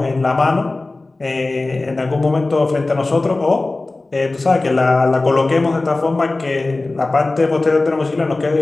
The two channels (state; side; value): quieter; right; 3.2 dB